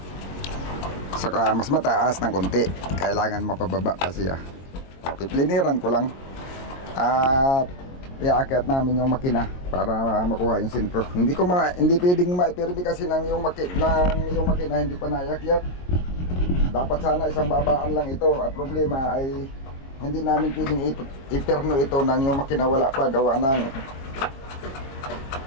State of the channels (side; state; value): right; late; 22 ms